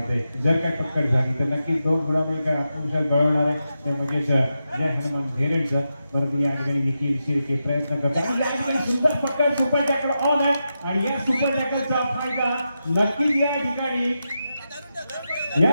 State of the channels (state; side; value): inverted; both; correlation -0.88